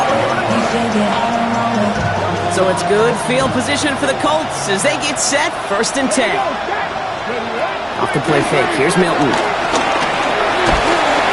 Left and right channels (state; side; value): identical; both; correlation 1.00